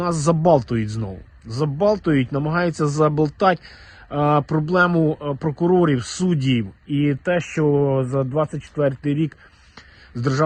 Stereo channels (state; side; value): identical; both; correlation 1.00